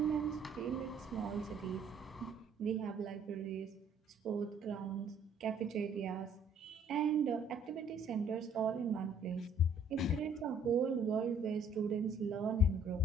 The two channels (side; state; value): both; normal; correlation 0.60